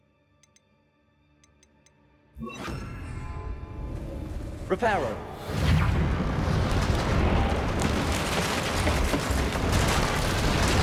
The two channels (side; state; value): both; identical; correlation 1.00